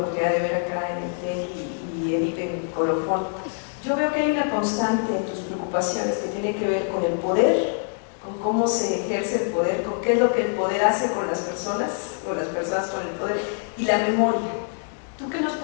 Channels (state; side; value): silent; right; 62 dB below the other